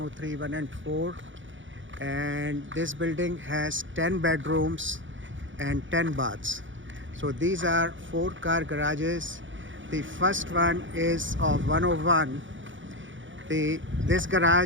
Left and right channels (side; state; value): left; late; 0.56 ms